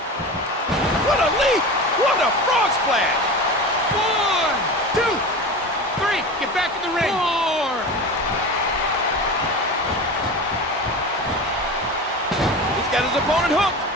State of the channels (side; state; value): both; normal; correlation 0.30